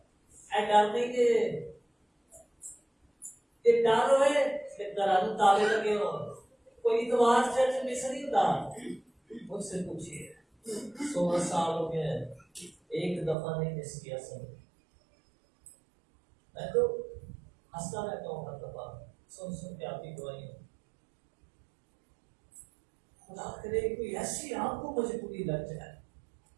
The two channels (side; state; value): left; drops out; at 13.4 s